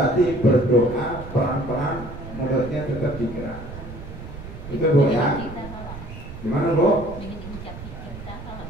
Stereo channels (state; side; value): noise; right; rumble, 12 dB below the sound